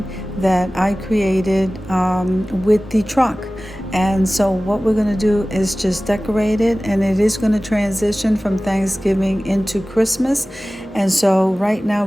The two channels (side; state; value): both; normal; correlation 0.97